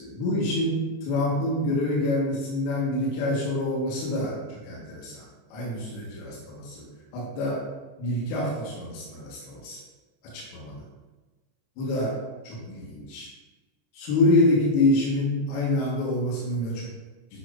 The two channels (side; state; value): right; late; 14 ms